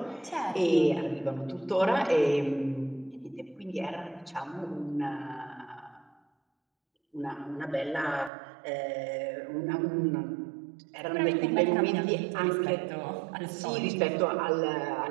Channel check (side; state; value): left; drops out; at 8.3 s